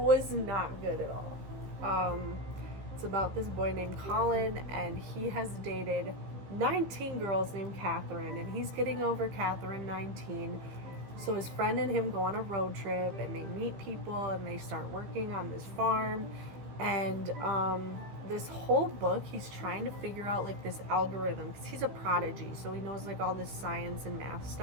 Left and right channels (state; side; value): late; left; 15 ms